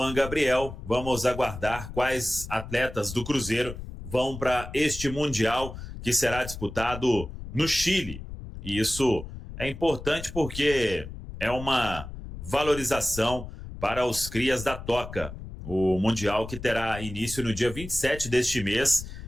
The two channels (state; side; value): noise; left; rumble, 11 dB below the sound